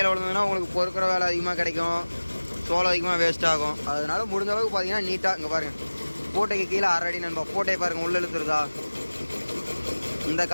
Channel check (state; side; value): inverted; both; correlation -1.00